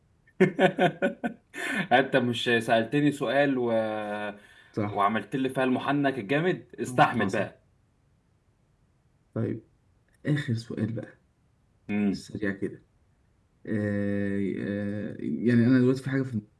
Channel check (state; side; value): identical; both; correlation 1.00